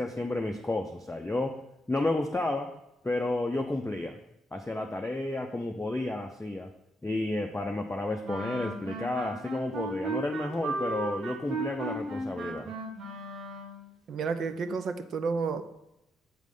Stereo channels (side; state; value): both; normal; correlation 0.81